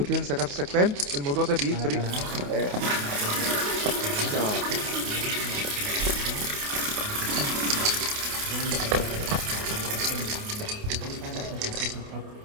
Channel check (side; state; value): left; late; 28 ms